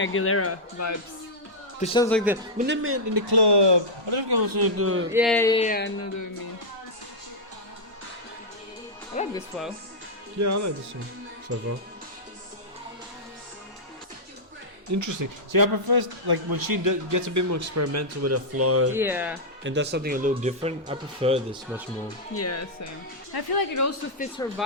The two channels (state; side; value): normal; both; correlation -0.07